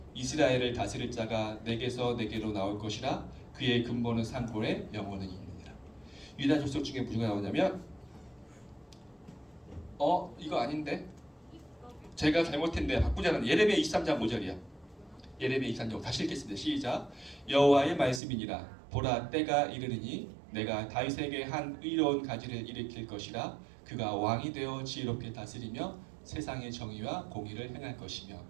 이스라엘을 다스릴 자가 내게서 내게로 나올 것이라 그의 근본은 산골에 영원은 있느니라. 유다 족속 중에 누가 나오냐면 이거 아닌데 제가 잘못했는데 바꾸자는 예레미야 23장 5절이야. 예레미야 23장 다시 읽겠습니다. 시작. 여호와의 말씀이니라. 보라 때가 이르르니 내가 다윗에게 한 의로운 가지를 일으킬 것이라. 그가 왕이 되어 지혜롭게 다스리며 세상의 정의와 공의를 행할 것이며.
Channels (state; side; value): drops out; left; at 18.2 s